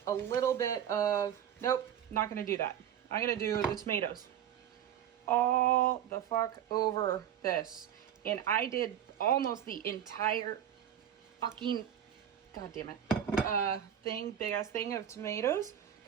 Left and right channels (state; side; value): quieter; left; 9.9 dB